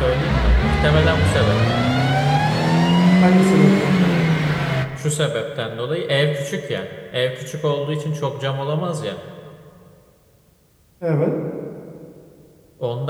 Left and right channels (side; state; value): both; identical; correlation 1.00